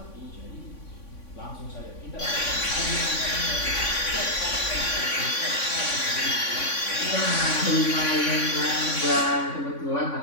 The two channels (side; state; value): right; late; 3.5 ms